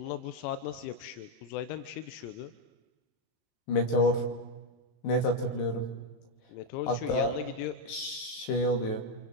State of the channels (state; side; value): late; right; 19 ms